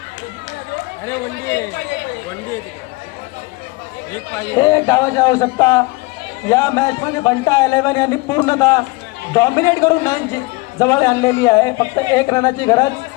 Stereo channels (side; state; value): right; quieter; 24.5 dB